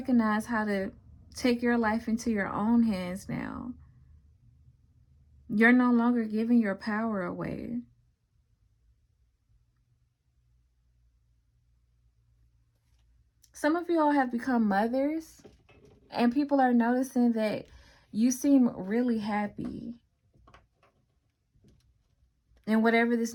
how to take your life into your own hands now. You're no longer giving your power away. Some of you all have become mothers, and people are noticing that you seem really happy in whatever this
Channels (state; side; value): identical; both; correlation 1.00